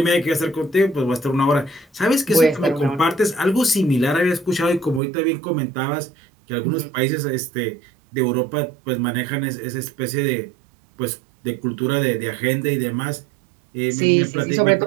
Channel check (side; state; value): left; drops out; at 5.0 s